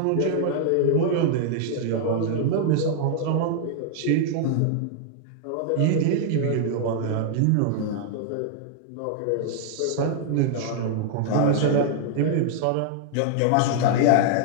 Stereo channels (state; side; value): different; both; correlation -0.01